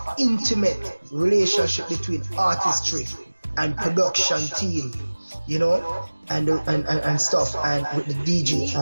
intimate relationship between artistry and production team, and stuff, and with the DJ.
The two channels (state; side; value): inverted; both; correlation -1.00